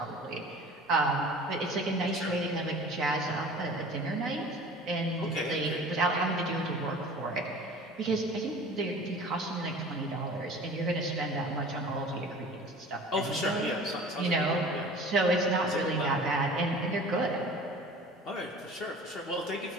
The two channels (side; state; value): both; normal; correlation 0.43